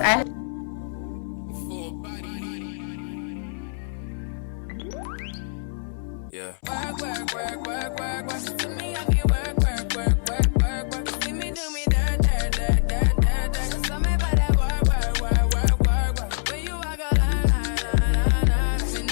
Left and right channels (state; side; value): silent; right; 62 dB below the other